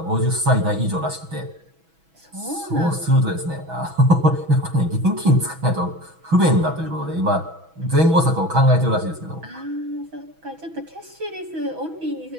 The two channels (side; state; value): left; late; 6.2 ms